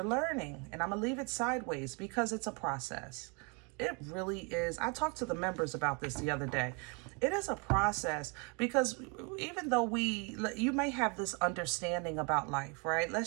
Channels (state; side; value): quieter; left; 33.3 dB